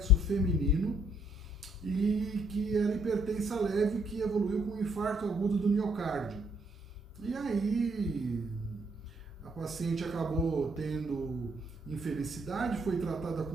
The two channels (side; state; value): both; normal; correlation 0.69